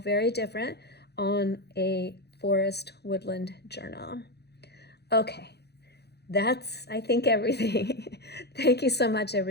different on a forest woodland journal. Okay, that's, I think, everything. Thank you so much,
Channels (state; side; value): late; right; 0.48 ms